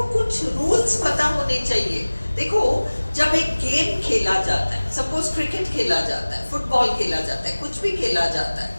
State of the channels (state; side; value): inverted; both; correlation -1.00